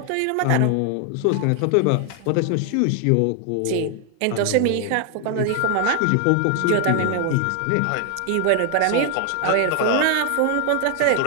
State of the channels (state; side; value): different; both; correlation 0.00